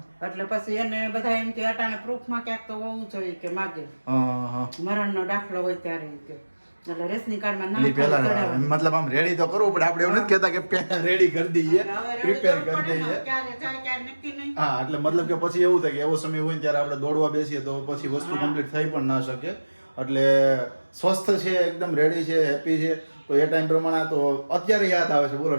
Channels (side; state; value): both; inverted; correlation -1.00